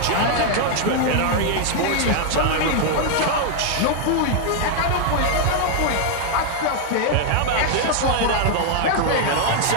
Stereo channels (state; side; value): different; both; correlation 0.00